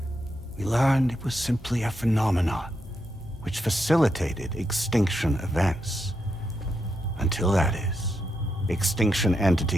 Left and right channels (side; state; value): both; normal; correlation 0.83